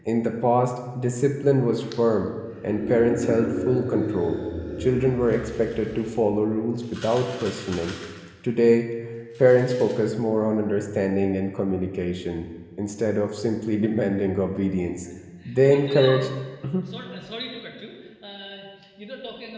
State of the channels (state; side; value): identical; both; correlation 1.00